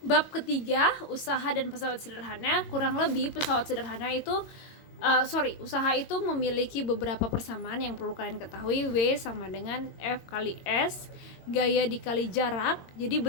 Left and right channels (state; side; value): late; right; 22 ms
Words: ketiga, usaha dan pesawat sederhana? Kurang lebih pesawat sederhana itu usaha itu memiliki beberapa persamaan yang perlu kalian ketahui. W sama dengan F kali S, gaya dikali jarak. Jadi